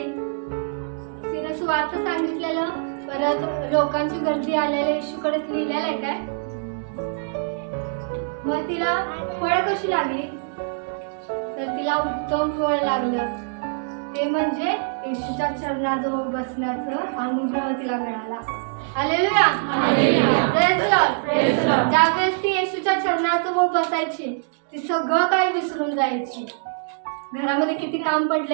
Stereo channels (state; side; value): silent; left; digital silence